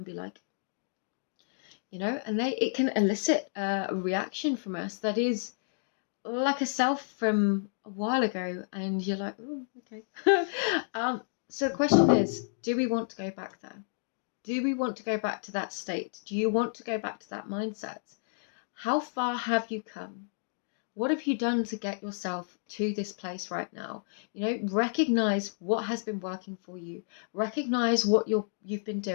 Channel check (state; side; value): silent; right; digital silence